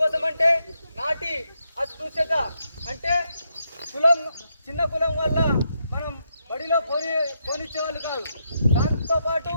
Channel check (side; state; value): both; inverted; correlation -0.81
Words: అంటే నాటి అస్పృశ్యత, అంటే కులం, చిన్న కులం వల్ల మనం బడిలో పోనిచ్చేవాళ్ళు కాదు. దాంతోపాటు